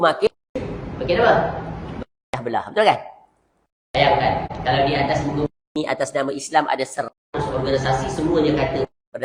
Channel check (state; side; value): identical; both; correlation 1.00